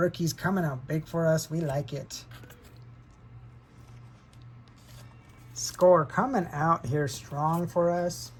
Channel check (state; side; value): identical; both; correlation 1.00